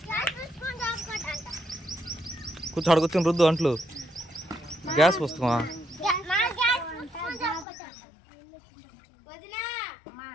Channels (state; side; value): drops out; right; at 7.7 s